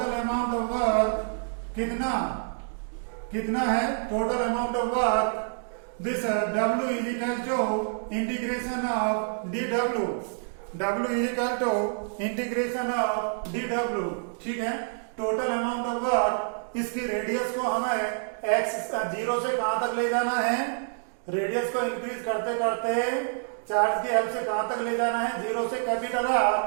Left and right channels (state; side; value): silent; left; digital silence